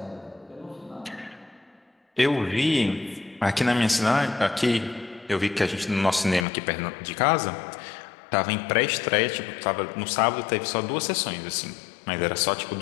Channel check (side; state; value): right; drops out; at 6.5 s